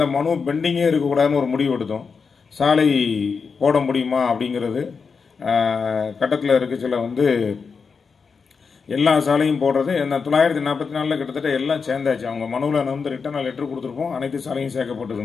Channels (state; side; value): quieter; right; 5.4 dB